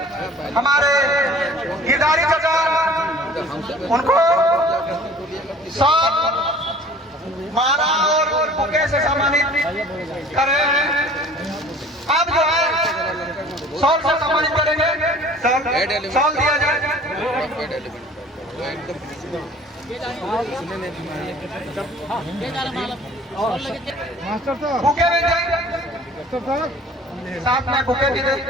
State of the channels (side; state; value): both; normal; correlation 0.49